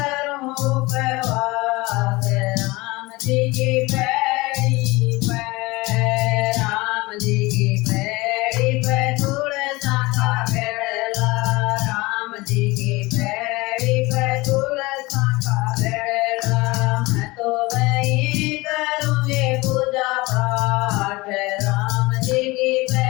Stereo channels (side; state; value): right; quieter; 22.3 dB